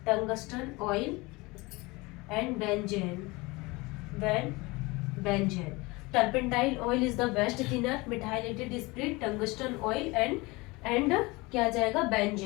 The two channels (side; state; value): right; quieter; 23.9 dB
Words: and benzene. Turpentine oil is the best thinner, methylated spirit, tungsten oil and क्या आ जाएगा?